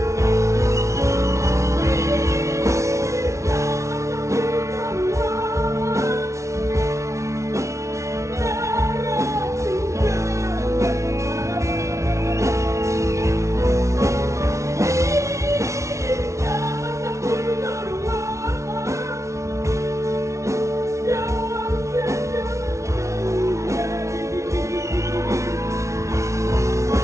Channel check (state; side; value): late; left; 0.14 ms